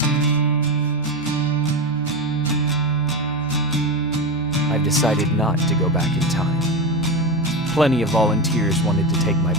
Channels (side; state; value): both; normal; correlation 0.18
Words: I've decided not to go back in time. Plenty of volunteers wanted to take my